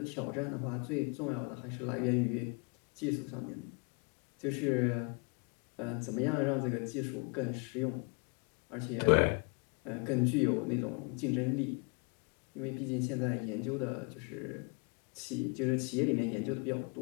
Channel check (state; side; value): quieter; right; 33.3 dB